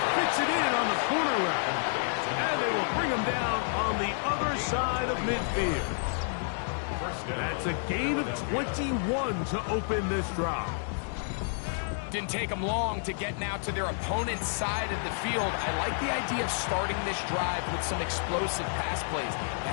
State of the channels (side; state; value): right; silent; digital silence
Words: fits it in on the corner route. And they will bring him down on the other side of midfield. That's a gain of 21 to open this drive. Didn't take them long to get now to their opponent's side of the field. I like the idea of starting this drive with some explosive pass plays.